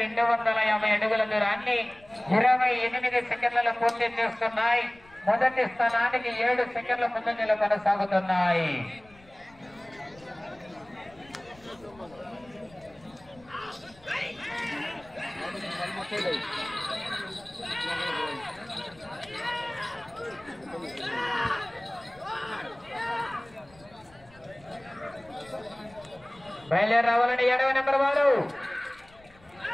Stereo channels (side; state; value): left; noise; rumble, 26 dB below the sound